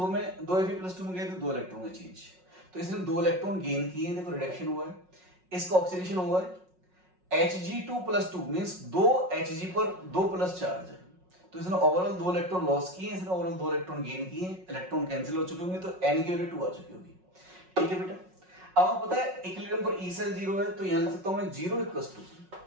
Fe+2 में गए तो 2 इलेक्ट्रॉन का चेंज, तो इसने 2 इलेक्ट्रॉन गेन किए, देखो रिडक्शन हुआ है, इसका ऑक्सीडेशन हुआ है, Hg2+2 मींस 2 Hg पर 2 प्लस चार्ज है, तो इसने ओवरऑल 2 इलेक्ट्रॉन लॉस किए, इसने ओवरऑल 2 इलेक्ट्रॉन गेन किए, इलेक्ट्रॉन कैंसिल हो चुके होंगे, तो n की वैल्यू 2 आ चुकी होगी। ठीक है बेटा, अब आपको पता है इक्विलिब्रियम पर E सेल 0 है, तो यहां लिख सकता हूं मैं 0 =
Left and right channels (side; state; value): left; late; 5.4 ms